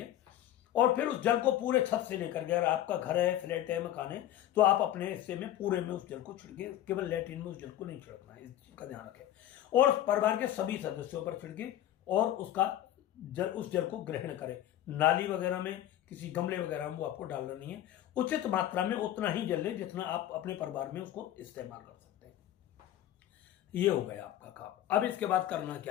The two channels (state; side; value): quieter; right; 12.3 dB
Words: और फिर उस जल को पूरे छत से लेकर के, अगर आपका घर है, फ्लैट है, मकान है, तो आप अपने हिस्से में पूरे में उस जल को छिड़के, केवल लैट्रिन में उस जल को नहीं छिड़कना है, इस चीज का ध्यान रखें। और परिवार के सभी सदस्यों पर छिड़के और उस जल को ग्रहण करें। नाली वगैरह में, किसी गमले वगैरह में वो आपको डालना नहीं है। उचित मात्रा में उतना ही जल लें जितना आप अपने परिवार में उसको इस्तेमाल कर सकते हैं। ये हो गया आपका काम। अब इसके बाद करना